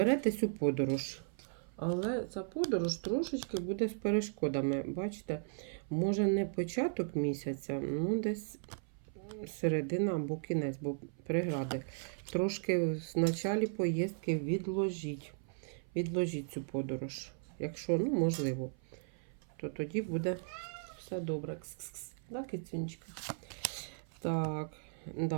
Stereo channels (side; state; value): left; silent; 53 dB below the other